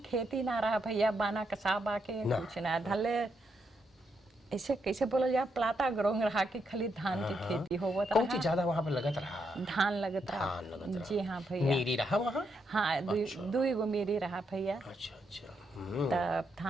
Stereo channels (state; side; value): normal; both; correlation 0.80